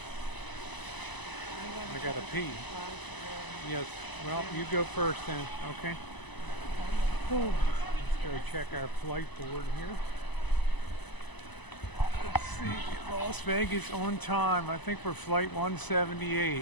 I got to pee. Yes. Well, you go first then. Okay. Let's go check our flight board here. Let's see. Las Vegas on time. I think we're flight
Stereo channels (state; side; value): late; right; 1.0 ms